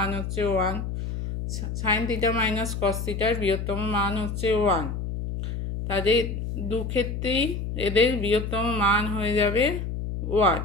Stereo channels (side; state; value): left; noise; hum, 4 dB below the sound